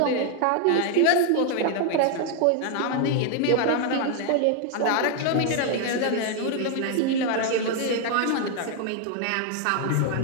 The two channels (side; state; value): both; different; correlation 0.00